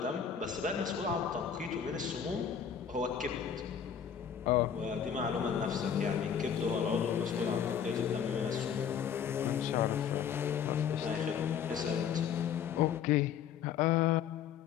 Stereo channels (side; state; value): right; quieter; 8.0 dB